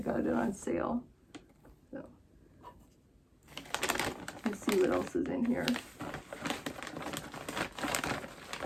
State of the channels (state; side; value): identical; both; correlation 1.00